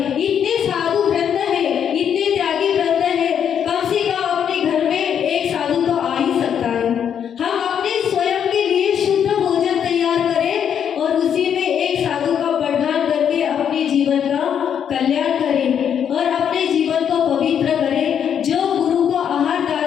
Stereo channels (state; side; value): quieter; right; 8.4 dB